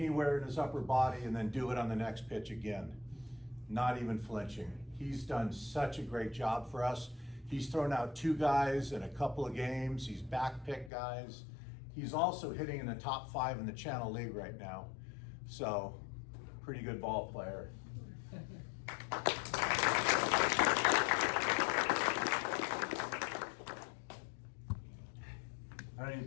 in his upper body and then do it on the next pitch again, not even flinching. He's done such a great job for us. He's thrown out 2 guys in a couple of games. He's backpicked guys. He's also hitting in the top 5 in the Channel League right now. So, pretty good ball player. I don't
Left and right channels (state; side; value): drops out; right; at 10.9 s